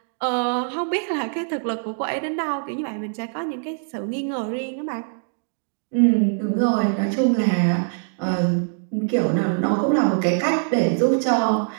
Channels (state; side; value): silent; left; 63 dB below the other